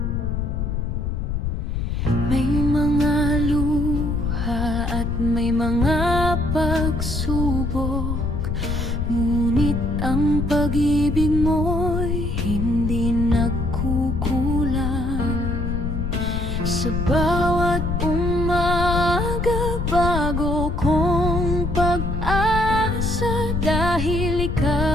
May mga luha at may mga pagsubok, ngunit ang pag-ibig mo'y hindi nagkukulang. Sa bawat umaga, bago kong pag-asa, dahil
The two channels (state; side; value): noise; left; rumble, 1 dB below the sound